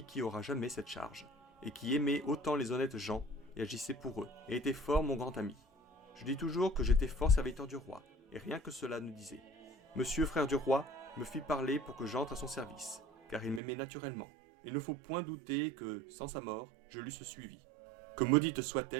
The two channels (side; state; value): left; drops out; at 13.6 s